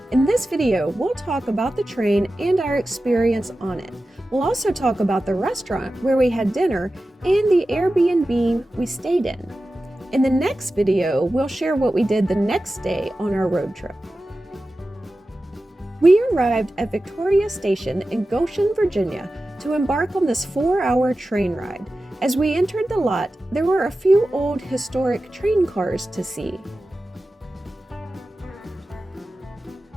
In this video, we'll talk about the train and our experience on it. We'll also talk about the restaurant where we had dinner and the Airbnb we stayed in. In the next video, we'll share what we did the next day on our road trip. We arrived at Victoria Station in Goshen, Virginia to embark on this 4-hour train ride. As we entered the lot, there were a few old historic train cars to see.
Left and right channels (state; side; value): normal; both; correlation 0.94